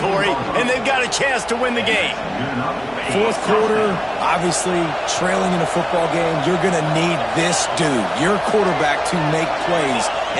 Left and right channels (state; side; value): noise; right; hum, 25 dB below the sound